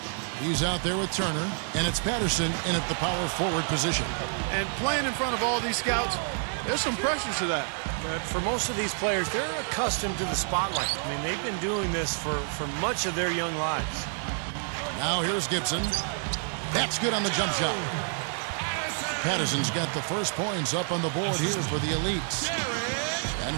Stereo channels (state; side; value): silent; left; 59 dB below the other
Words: He's out there with Turner, and it's Patterson in at the power forward position. And playing in front of all these scouts, there's some pressure to that. But for most of these players, they're accustomed to the spotlight. I mean, they've been doing this for much of their young lives. Now here's Gibson. That's good on the jump shot. Patterson's got the first points up on the board here for the elites. And